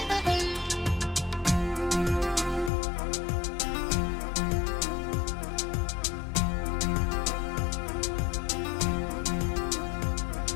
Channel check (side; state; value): right; drops out; at 2.7 s